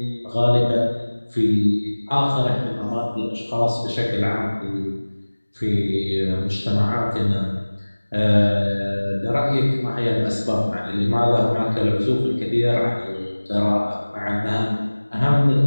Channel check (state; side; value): inverted; both; correlation -1.00